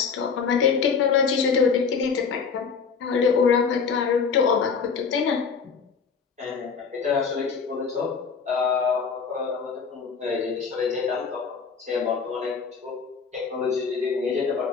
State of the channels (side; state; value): right; quieter; 5.7 dB